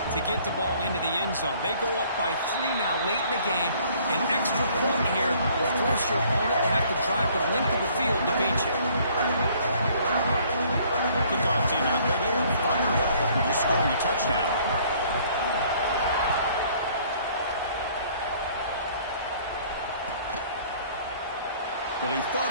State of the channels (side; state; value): both; inverted; correlation -0.59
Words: to get the ball into the end zone. They go up by 3 now late in the game. An extra point here will force your opponent to have to drive the length of the field to beat you. Kickoff team out there, they are fired up after just scoring a touchdown. Well, he thought